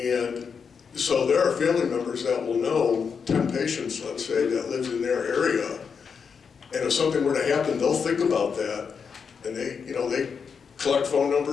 so there are family members that will know 10 patients, let's say, that lives in their area. And if something were to happen, they'll think about that. And they collect phone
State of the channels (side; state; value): right; quieter; 6.1 dB